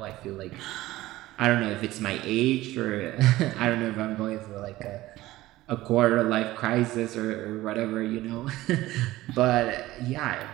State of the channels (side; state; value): left; quieter; 17.0 dB